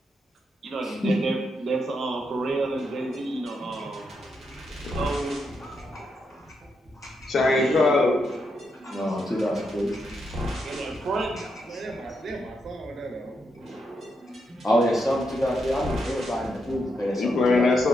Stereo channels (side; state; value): both; normal; correlation 0.81